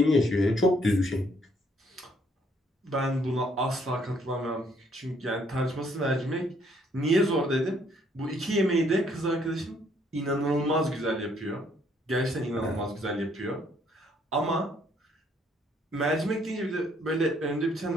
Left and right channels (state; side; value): normal; both; correlation 0.67